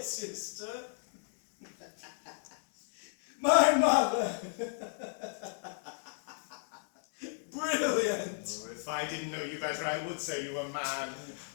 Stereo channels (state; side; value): silent; right; digital silence